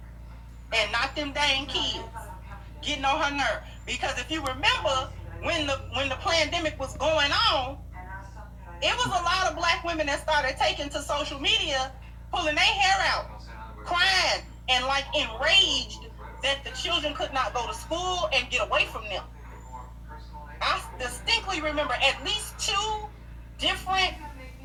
and not them dang kids getting on her nerve. Because if you remember, when the pandemic was going on, it was a lot of black women that started taking to social media, pulling their hair out, crying, and like enraged that the children could not go to school and get away from them. I distinctly remember at least 2 different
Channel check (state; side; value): identical; both; correlation 1.00